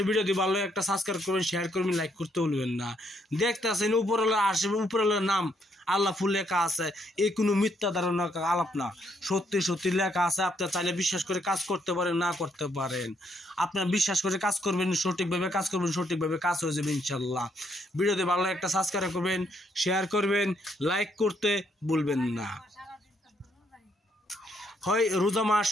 ভিডিও দিয়ে ভালো একটা সাবস্ক্রাইব করবেন, শেয়ার করবেন, লাইক করতে ভুলবেন না। দেখতেছেন উপরওয়ালা আসবে, উপরওয়ালার নাম আল্লাহ ফুল লেখা আছে, এই কোনো মিথ্যা ধারণা আলাপ না, সত্যি সত্যি লেখা আছে। আপনার চাইলে বিশ্বাস করে কাজ করতে পারেন, না করতে পারেন। আপনার বিশ্বাস করে কাজ করবেন, সঠিকভাবে কাজ করবেন, সঠিকভাবে কাজ হয়ে যাবে ইনশাল্লাহ। ভিডিওতে ভালো একটা সাবস্ক্রাইব করবেন, শেয়ার করবেন, লাইক করতে ভুলবেন না। হয় রোজা মাস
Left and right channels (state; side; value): normal; both; correlation 0.72